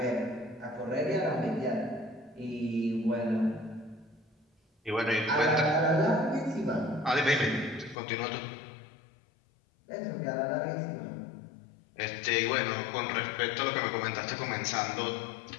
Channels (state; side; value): drops out; right; at 8.0 s